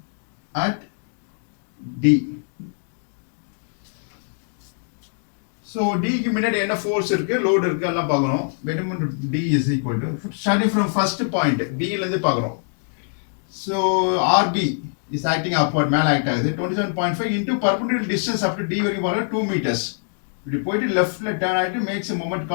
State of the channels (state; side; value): silent; right; 62 dB below the other